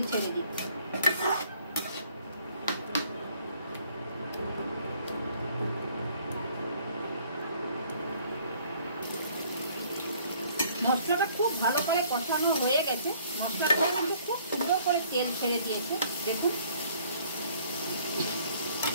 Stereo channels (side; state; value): both; inverted; correlation -0.60